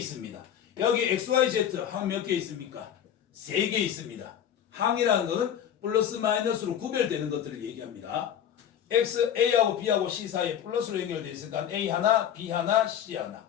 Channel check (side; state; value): right; quieter; 9.6 dB